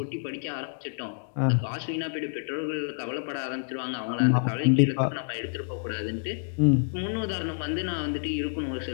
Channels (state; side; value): silent; right; digital silence